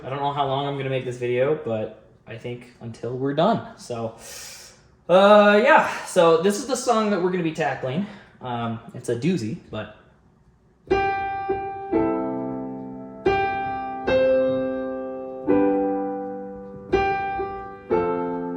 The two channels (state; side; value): identical; both; correlation 1.00